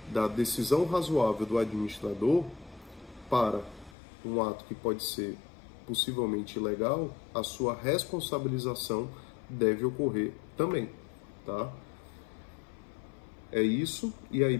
da decisão razoável do administrador para um ato que pode ser possivelmente ilegal, a sua responsabilização deve ocorrer também, tá? É isso, e aí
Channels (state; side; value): drops out; right; at 4.0 s